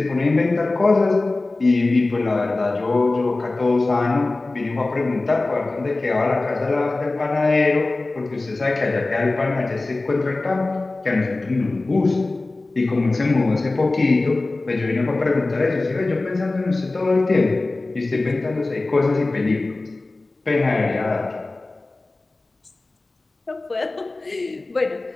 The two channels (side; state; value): right; quieter; 3.1 dB